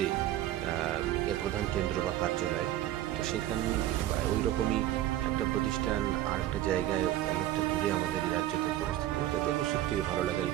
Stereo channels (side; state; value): left; quieter; 13.5 dB